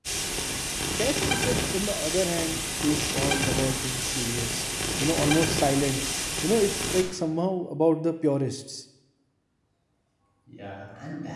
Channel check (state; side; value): identical; both; correlation 1.00